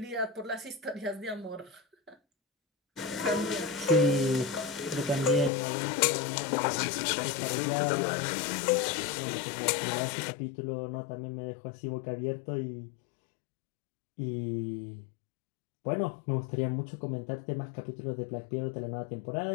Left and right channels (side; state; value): right; drops out; at 5.5 s